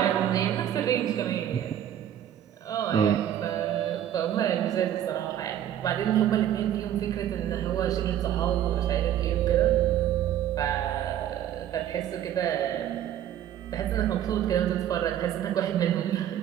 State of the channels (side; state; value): left; quieter; 10.9 dB